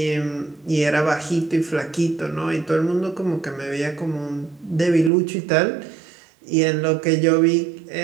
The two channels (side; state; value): left; drops out; at 5.1 s